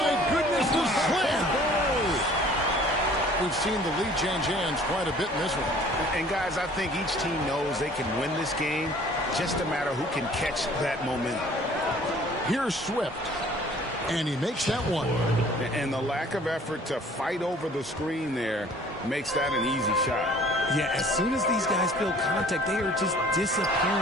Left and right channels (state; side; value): normal; both; correlation 0.52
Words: goodness, the slam! We've seen the lead change hands quite a bit in this one. And, guys, I think each team knows they can win this game. Just a matter who can catch that momentum. Here's Swift. And he makes that one. And the lack of effort to fight over the screen there makes that an easy shot. Yeah, as soon as these guys feel contact, they are just